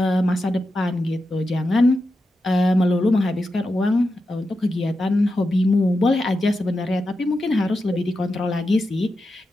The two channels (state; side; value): normal; both; correlation 0.89